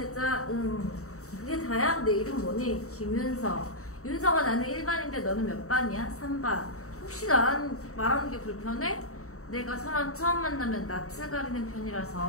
그게 다야? 내 이름 뭐니? 김윤서. 윤서가 나는 1반인데 너는 몇 반이야? 3반. 혹시 나랑 말하는 게 불편해? 내가 사람 처음 만나면 낯을 가리는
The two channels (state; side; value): late; right; 0.64 ms